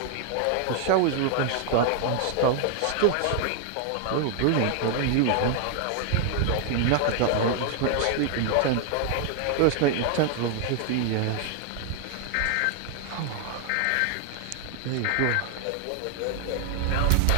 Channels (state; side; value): different; both; correlation 0.00